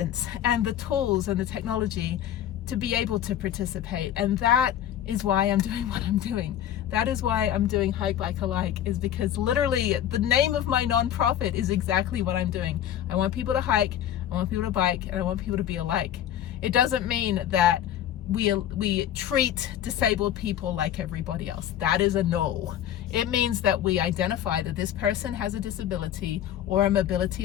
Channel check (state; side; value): quieter; right; 10.9 dB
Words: and the tools and the technology to be able to participate. And that is why I'm doing what I'm doing. That is why I'm doing Hike Bike Alike, is because literally the name of my nonprofit is exactly what I'm doing. I want people to hike, I want people to bike, and I want people to be alike. It doesn't mean that we treat disabled people like everybody else. That is a no. It means that we identify that this person has a disability or a